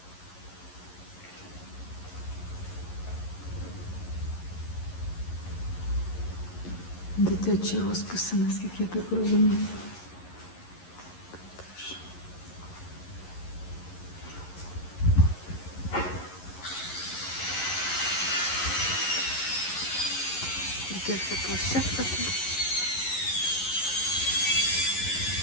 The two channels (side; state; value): right; late; 11 ms